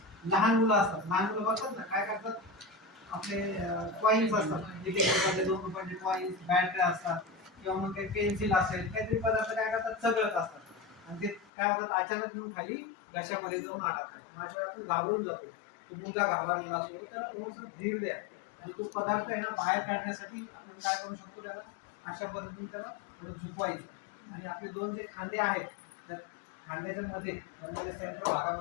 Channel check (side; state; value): right; drops out; at 11.5 s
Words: लहान मुलं असतात, लहान मुलं बघतात ना काय करतात, आपले कॉईन्स असतात, एक रुपयाचे 2 रुपयाचे कॉईन्स, बॅटऱ्या असतात किंवा मग काही पेन्सिल असेल, काहीतरी पदार्थ काय करतात चगळत असतात आणि ते काय होतात अचानक येऊन खाली घशामध्ये जाऊन अडकतात. मग अशा वेळी आपण घाबरून जातो. तो मुलगा घाबरलेला असतो, त्याला थोडंसं धीर द्या आणि तो पदार्थ आहे ना बाहेर काढण्यासाठी आपण काय करू शकतो, त्याला अशा पद्धतीने त्याला थोडं झुकवायचं आणि आपले दोन जे खांदे आहेत त्या खांद्याच्या मध्ये सेंटर